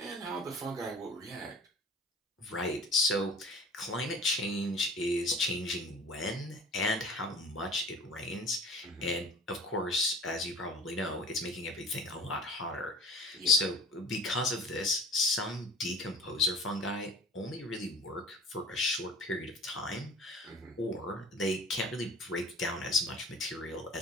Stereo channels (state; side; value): normal; both; correlation 0.44